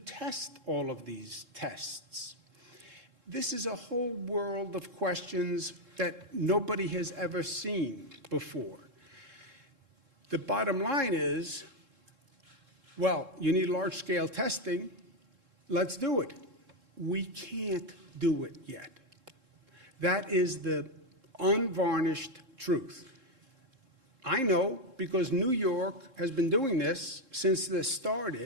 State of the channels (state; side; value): late; left; 3.7 ms